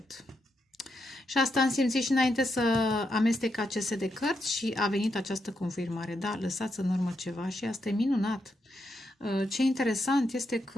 Și asta am simțit și înainte să amestec aceste de cărți și a venit această confirmare. Da, lăsați în urmă ceva și asta e minunat. Ce interesant este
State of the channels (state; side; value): normal; both; correlation 0.82